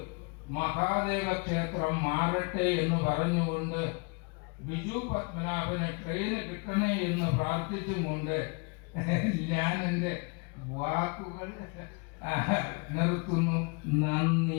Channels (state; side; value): quieter; right; 31.7 dB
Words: മഹാദേവ ക്ഷേത്രം മാറട്ടെ എന്ന് പറഞ്ഞുകൊണ്ട് ബിജു പത്മനാഭന് ട്രെയിന് കിട്ടണേ എന്ന് പ്രാർത്ഥിച്ചും കൊണ്ട് ഞാൻ എൻ്റെ വാക്കുകൾ നിർത്തുന്നു.